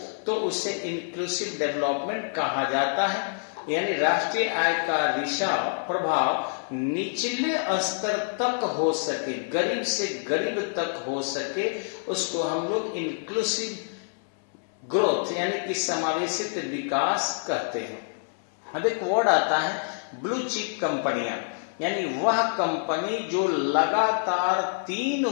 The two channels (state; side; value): silent; right; 60 dB below the other